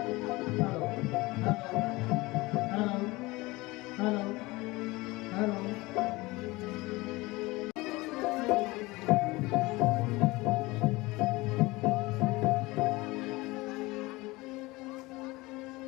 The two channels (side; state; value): right; quieter; 21.7 dB